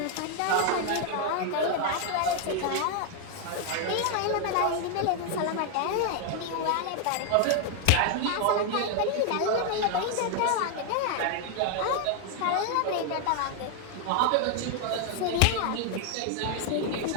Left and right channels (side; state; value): both; different; correlation 0.00